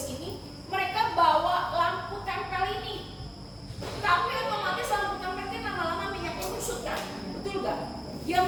ini, mereka bawa lampu tempel ini. Tapi otomatis lampu tempel ini lama-lama minyaknya menyusut kan? Betul gak? Yang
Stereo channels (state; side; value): identical; both; correlation 1.00